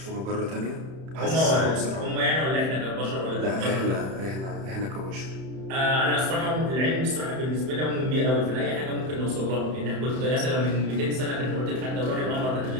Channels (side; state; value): left; late; 31 ms